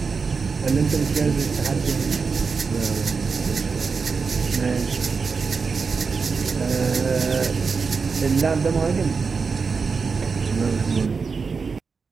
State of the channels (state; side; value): quieter; left; 5.0 dB